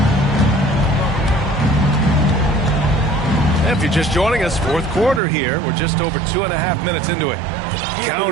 If you're just joining us, fourth quarter here. We're just over 2.5 minutes into it.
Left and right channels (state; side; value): drops out; left; at 5.2 s